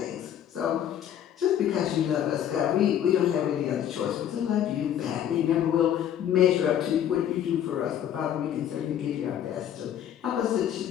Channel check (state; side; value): quieter; right; 10.2 dB